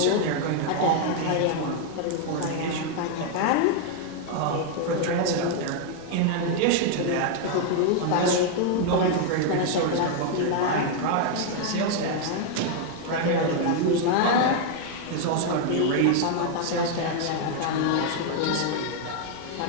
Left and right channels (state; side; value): different; both; correlation 0.00